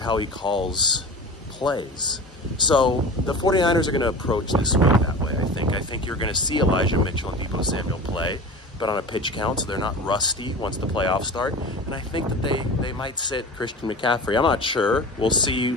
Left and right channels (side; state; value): both; normal; correlation 0.34